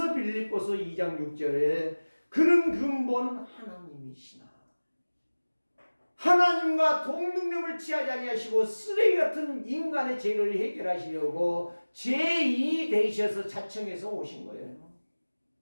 빌립보서 2장 6절에 그는 근본 하나님이시나 하나님과 동등력을 취하지 아니하시고 쓰레기 같은 인간의 죄를 해결하시려고 죄인이 되셔서 자청해서 오신 거예요.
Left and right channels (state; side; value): inverted; both; correlation -1.00